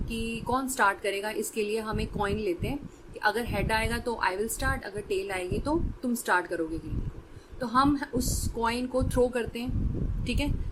कि कौन स्टार्ट करेगा, इसके लिए हम एक कॉइन लेते हैं कि अगर हेड आएगा तो आई विल स्टार्ट, अगर टेल आएगी तो तुम स्टार्ट करोगे गेम को. तो हम उस कॉइन को थ्रो करते हैं. ठीक है,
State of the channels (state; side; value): identical; both; correlation 1.00